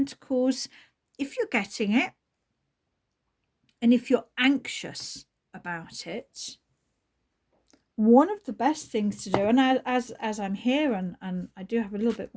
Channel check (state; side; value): identical; both; correlation 1.00